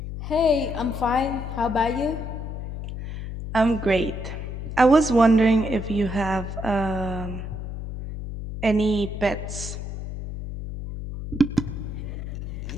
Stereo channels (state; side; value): noise; left; hum, 7 dB below the sound